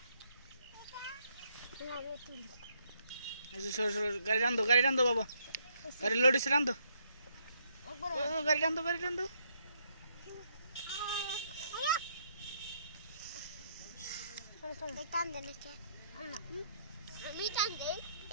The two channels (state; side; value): inverted; both; correlation -0.73